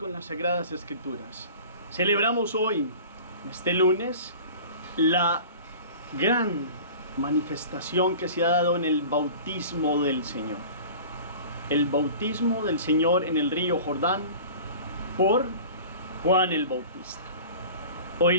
las Sagradas Escrituras. Celebramos hoy, este lunes, la gran manifestación que se ha dado en el bautismo del Señor. El bautismo del Señor en el río Jordán por Juan el Bautista.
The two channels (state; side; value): inverted; both; correlation -0.40